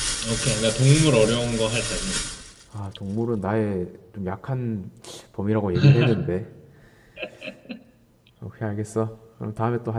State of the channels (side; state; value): both; identical; correlation 1.00